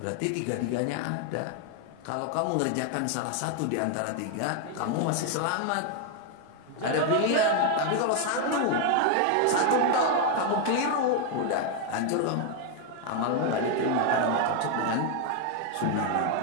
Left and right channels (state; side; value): different; both; correlation 0.01